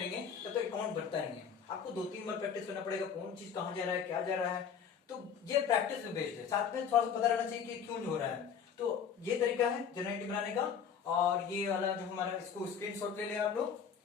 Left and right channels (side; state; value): right; quieter; 7.2 dB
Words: तब तक अकाउंट बनता नहीं है. आपको 2-3 बार प्रैक्टिस करना पड़ेगा, कौन चीज कहाँ जा रहा है, क्या जा रहा है. तो ये प्रैक्टिस में बेस्ड है. साथ में थोड़ा सा पता रहना चाहिए कि क्यों हो रहा है. तो ये तरीका है जर्नल एंट्री बनाने का. और ये वाला जो हमारा, इसको स्क्रीनशॉट ले लें आप लोग